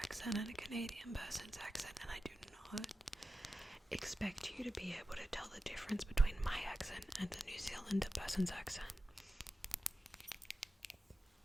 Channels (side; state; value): both; normal; correlation 0.92